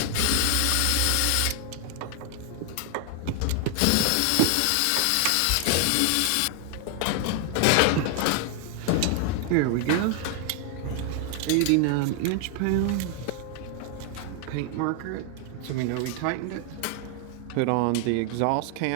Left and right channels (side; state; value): both; different; correlation 0.00